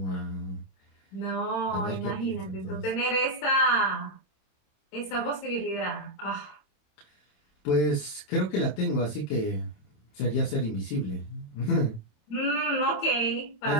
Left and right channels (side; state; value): right; late; 27 ms